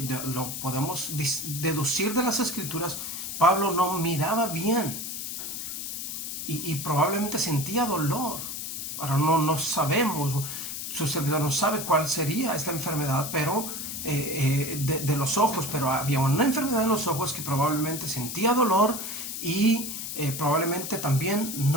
lo podemos deducir de las Escrituras, Pablo no miraba bien y probablemente sentía dolor. Ahora no sabemos, su servidor no sabe cuál sería esta enfermedad, pero de los ojos, pero había una enfermedad en los ojos que probablemente sentía dolor y probablemente también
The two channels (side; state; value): left; noise; hiss, 6 dB below the sound